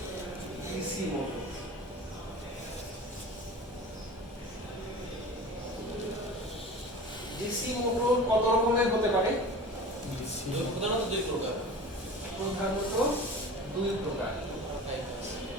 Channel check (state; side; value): normal; both; correlation 0.37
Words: ডিসি মোটর ডিসি মোটর কত রকমের হতে পারে প্রধানত দুই প্রকার